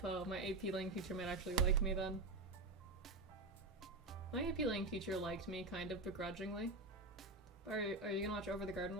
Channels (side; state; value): left; quieter; 3.0 dB